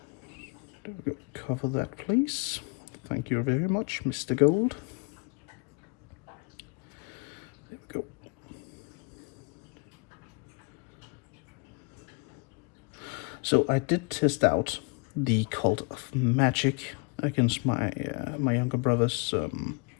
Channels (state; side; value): quieter; right; 31.9 dB